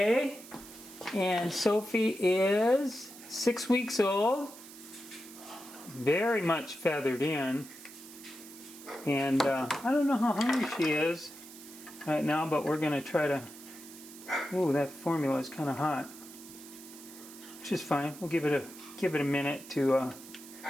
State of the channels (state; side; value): noise; right; hiss, 17 dB below the sound